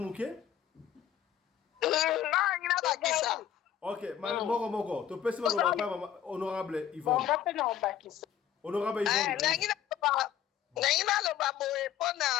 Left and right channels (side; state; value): right; quieter; 9.8 dB